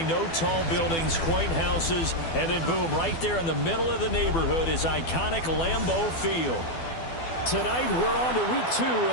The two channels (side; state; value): right; late; 12 ms